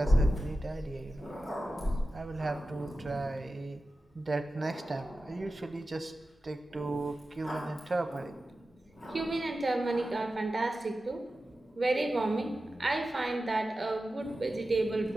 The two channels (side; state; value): both; normal; correlation 0.93